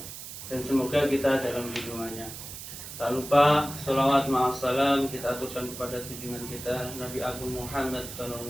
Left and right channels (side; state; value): right; noise; hiss, 11 dB below the sound